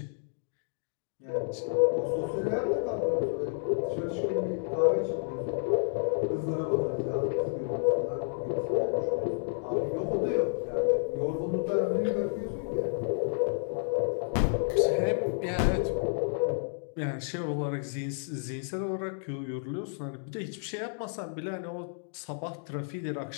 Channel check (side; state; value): right; silent; digital silence